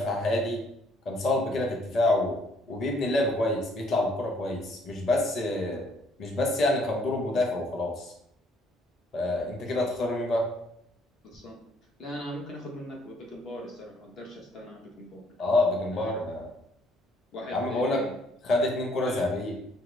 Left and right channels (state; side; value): normal; both; correlation 0.65